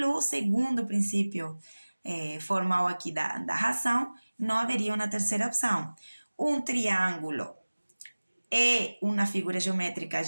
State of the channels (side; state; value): both; inverted; correlation -1.00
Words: segundo princípio formal aqui da razão, não haveria uma terceira opção. Um triângulo é uma figura geométrica